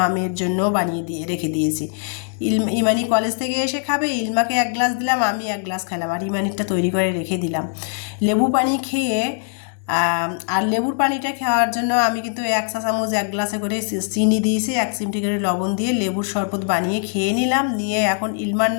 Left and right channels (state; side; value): silent; right; 56 dB below the other